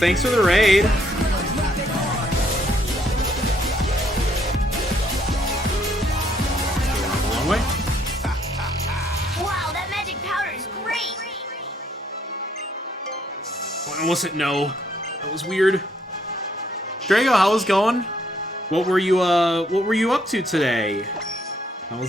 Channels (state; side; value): normal; both; correlation 0.69